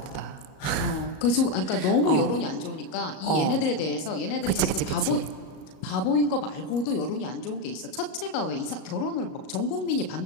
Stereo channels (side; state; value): right; late; 37 ms